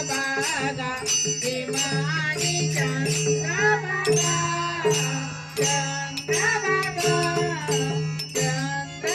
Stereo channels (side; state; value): both; identical; correlation 1.00